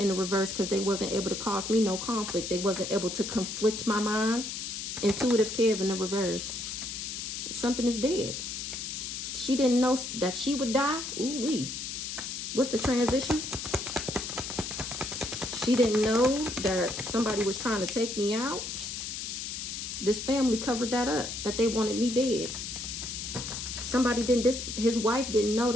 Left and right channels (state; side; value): noise; left; hiss, 6 dB below the sound